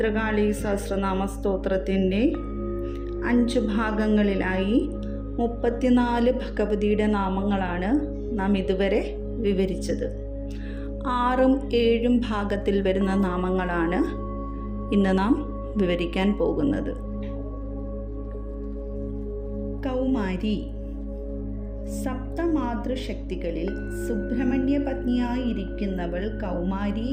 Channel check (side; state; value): both; identical; correlation 1.00